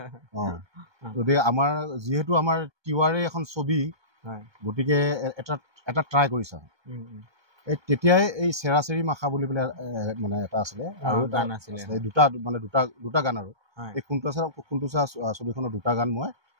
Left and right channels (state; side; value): late; left; 1.3 ms